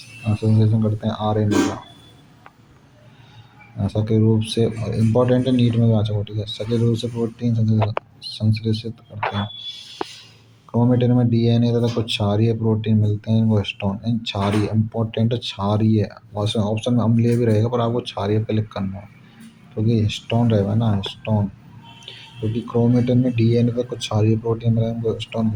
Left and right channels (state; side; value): identical; both; correlation 1.00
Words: करते हैं, आरएनए का। सक्रिय रूप से इम्पोर्टेंट है, नीट में भी आ चुका, ठीक है। सक्रिय रूप से प्रोटीन संश्लेषित करते हैं। क्रोमेटिन में डीएनए तथा कुछ क्षारीय प्रोटीन मिलते हैं, वो हिस्टोन, इन क्षारीय इम्पोर्टेंट क्षारीय, ऑप्शन में अम्लीय भी रहेगा पर आपको क्षारीय पे क्लिक करना है, क्योंकि हिस्टोन रहेगा ना, हिस्टोन, क्योंकि क्रोमेटिन में डीएनए पे कुछ क्षारीय प्रोटीन मिले हैं, वो हिस्टोन